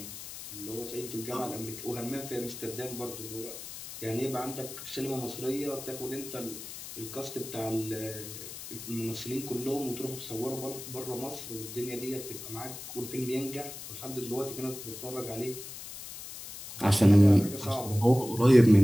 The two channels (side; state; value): left; noise; hiss, 11 dB below the sound